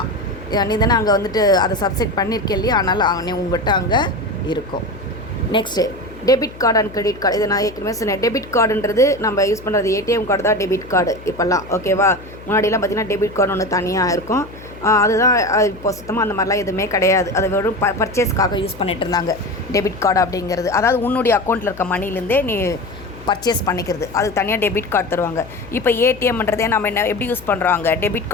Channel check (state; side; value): noise; left; hum, 18 dB below the sound